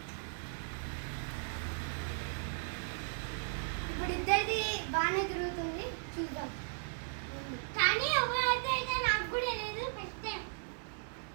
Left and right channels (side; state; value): left; silent; digital silence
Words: ఇప్పుడు ఇద్దరిది బాగానే తిరుగుతుంది, చూద్దాం. కానీ ఎవరైతే నాకు కూడా లేదు. ఫస్ట్ టైం